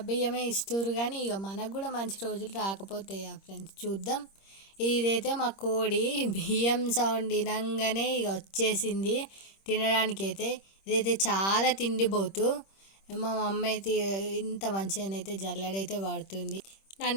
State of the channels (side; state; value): right; late; 26 ms